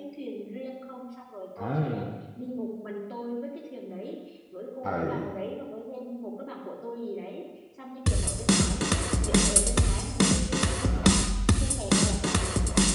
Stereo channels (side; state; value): both; identical; correlation 1.00